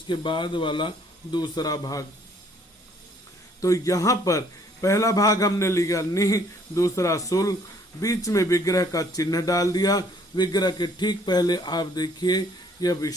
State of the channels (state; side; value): normal; both; correlation 0.62